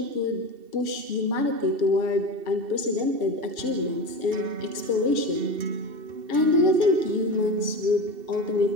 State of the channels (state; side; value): late; left; 2.7 ms